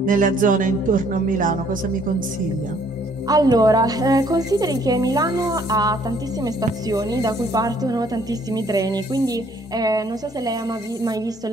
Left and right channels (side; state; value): both; normal; correlation 0.63